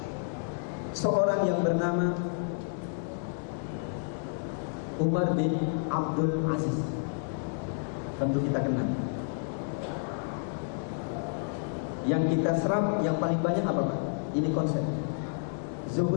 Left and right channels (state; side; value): silent; right; digital silence